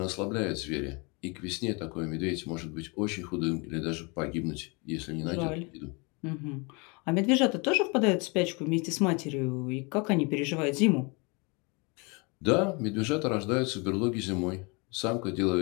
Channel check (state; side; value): quieter; right; 30.1 dB